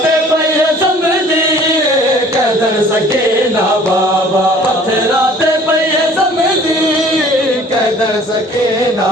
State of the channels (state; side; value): normal; both; correlation 0.52